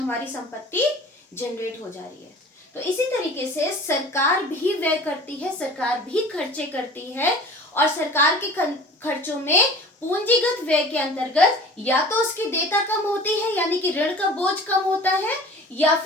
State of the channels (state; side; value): normal; both; correlation 0.42